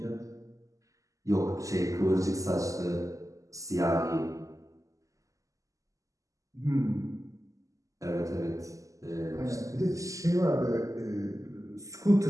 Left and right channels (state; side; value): late; left; 0.16 ms